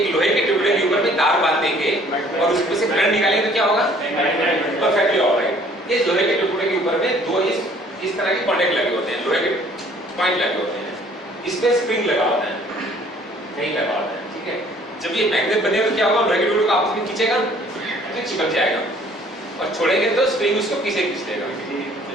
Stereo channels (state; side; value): normal; both; correlation 0.57